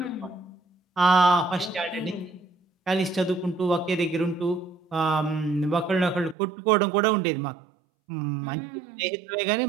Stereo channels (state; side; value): drops out; left; at 6.4 s